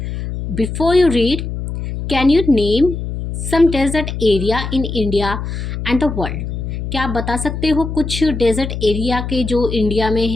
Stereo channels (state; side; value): noise; left; hum, 5 dB below the sound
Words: Before you read, can you name some desert area in India and the world? क्या आप बता सकते हो कुछ डेजर्ट एरिया के जो इंडिया में